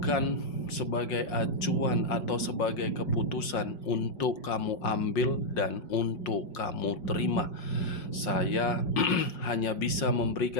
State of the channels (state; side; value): late; right; 5.6 ms